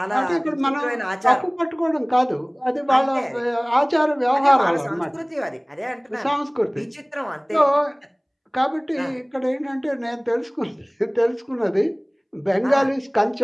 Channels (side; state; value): both; identical; correlation 1.00